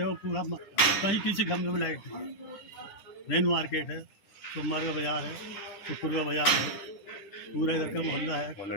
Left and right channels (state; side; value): late; right; 9.9 ms